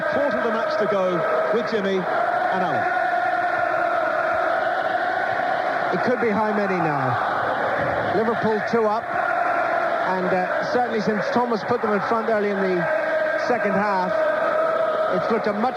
quarter of the match to go with Jimmy and Alan. It could be how many now? Liverpool 2 up, and certainly since Thomas put them in front early in the second half, it's looked a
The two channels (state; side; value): identical; both; correlation 1.00